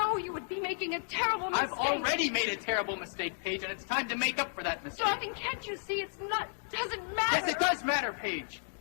you would be making a terrible mistake. I've already made a terrible mistake, Paige, and it's time to make up for that mistake. Darling, can't you see it's not, doesn't matter? Yes, it does matter, Paige.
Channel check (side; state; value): right; silent; 56 dB below the other